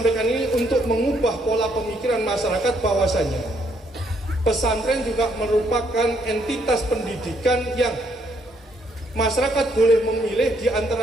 ini untuk mengubah pola pemikiran masyarakat bahwasanya pesantren juga merupakan entitas pendidikan yang masyarakat boleh memilih di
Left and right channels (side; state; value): both; normal; correlation 0.71